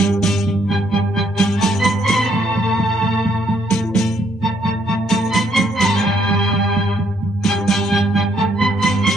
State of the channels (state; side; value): noise; right; hum, 26 dB below the sound